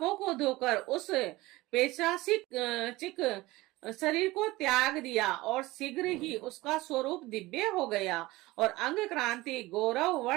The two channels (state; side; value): quieter; left; 19.7 dB